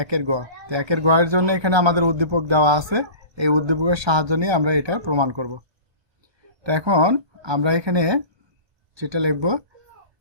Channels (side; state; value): left; late; 1.3 ms